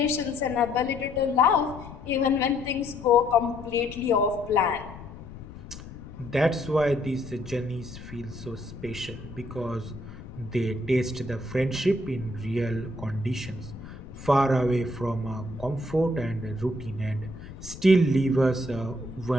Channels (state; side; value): noise; left; rumble, 14 dB below the sound